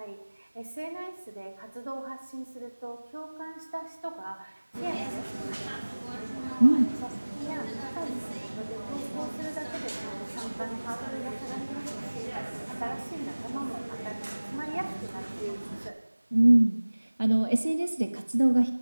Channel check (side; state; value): both; inverted; correlation -1.00